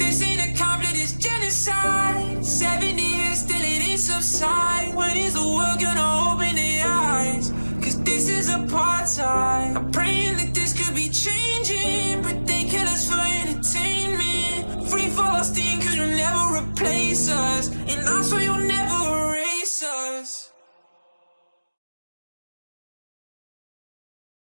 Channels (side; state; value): both; inverted; correlation -1.00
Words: ain't a conflict, it's genocide. 70 years still it ain't subside. When is the world gonna open their eyes? Cause this is apartheid. I'm praying that this could be changing, but they kill us for entertainment. Free Palestine, cause you'll never replace us, and I swear you'll never erase us.